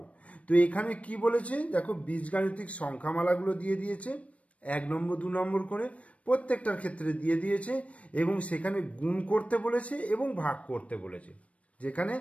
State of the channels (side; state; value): right; late; 0.064 ms